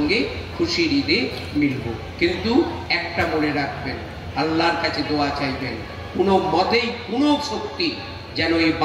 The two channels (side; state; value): both; identical; correlation 1.00